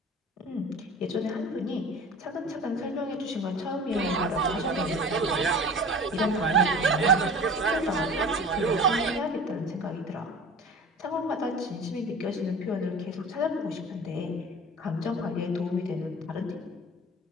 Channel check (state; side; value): normal; both; correlation 0.40